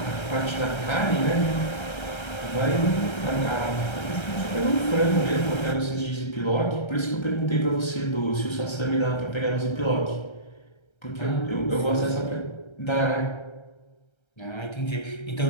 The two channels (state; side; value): late; right; 1.3 ms